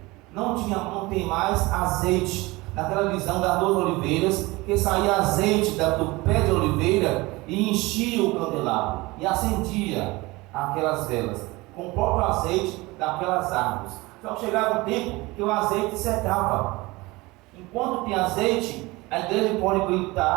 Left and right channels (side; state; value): left; quieter; 22.1 dB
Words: Não tem mais azeite. Naquela visão das 2 oliveiras, que saía azeite do pé de oliveira e enchia o candelabro e acendia aquelas velas com o próprio azeite daquelas árvores. Só que chegava um tempo que o azeite secava. Enquanto tem azeite, a igreja pode